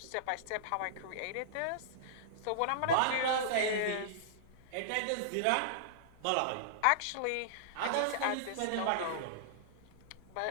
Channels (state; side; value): different; both; correlation -0.02